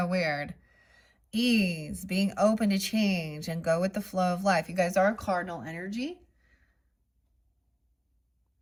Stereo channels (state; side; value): identical; both; correlation 1.00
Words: weird. Ease, being open to change and go with the flow of life. You guys are cardinal energy.